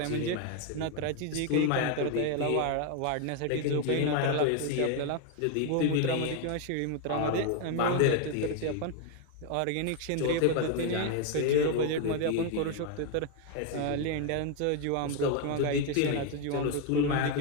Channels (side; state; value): both; different; correlation 0.01